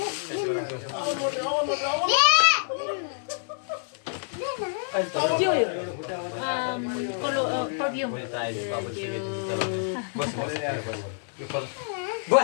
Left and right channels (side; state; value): right; silent; 60 dB below the other